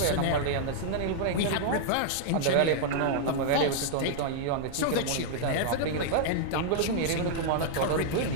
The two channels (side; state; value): both; different; correlation -0.01